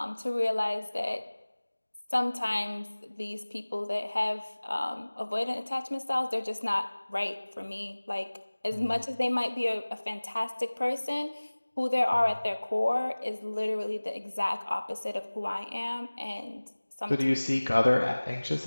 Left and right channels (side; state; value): both; inverted; correlation -1.00